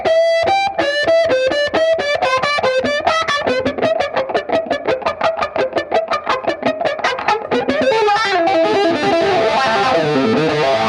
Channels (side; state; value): both; identical; correlation 1.00